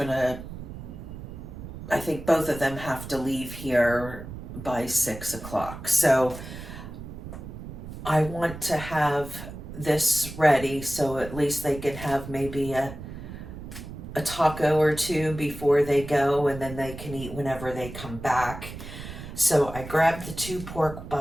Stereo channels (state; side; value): noise; right; rumble, 11 dB below the sound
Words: I think both of them have to leave here by 6 o'clock. So I want to have this ready so at least they can have maybe a taco or 2 before they go, and then they can eat whenever they come back. So I grabbed the 2 pork